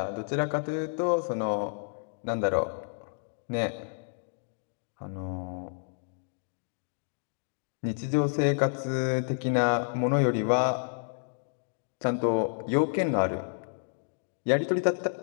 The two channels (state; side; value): silent; right; digital silence